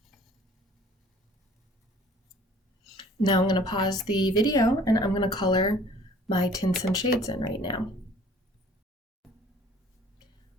Now I'm going to pause the video and I'm going to color my tints and shades in right now.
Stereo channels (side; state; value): both; normal; correlation 0.52